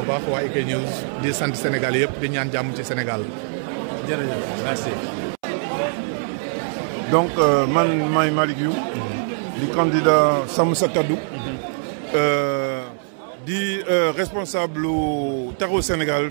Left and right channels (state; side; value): silent; left; 64 dB below the other